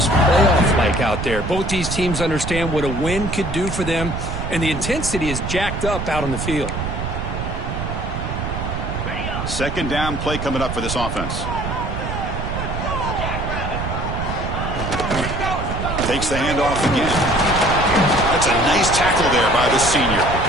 playoff-like out there. Both these teams understand what a win could do for them, and the intensity is jacked up out on the field. 2nd down play coming up for this offense. Takes the handoff again. That's a nice tackle there by the senior.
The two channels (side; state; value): right; noise; rumble, 4 dB below the sound